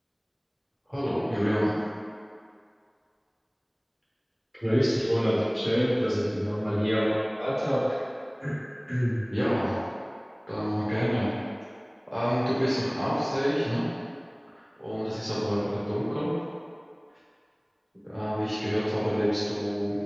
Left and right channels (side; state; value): both; identical; correlation 1.00